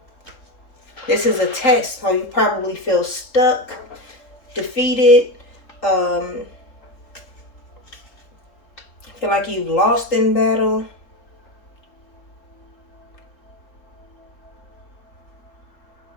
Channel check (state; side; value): late; right; 4.0 ms